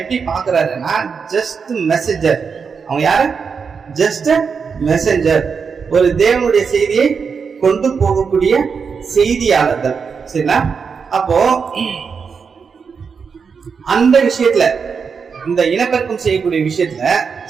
பாக்குறாருன்னா, ஜஸ்ட் மெசேஜர். அவங்க யாரு, ஜஸ்ட் மெசேஞ்சர், ஒரு தேவனுடைய செய்தியை கொண்டு போகக்கூடிய செய்தியாளர்கள். சரிங்களா? அப்போ அந்த விஷயத்துல, இந்த இனப்பெருக்கம் செய்யக்கூடிய விஷயத்துல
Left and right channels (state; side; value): quieter; left; 5.8 dB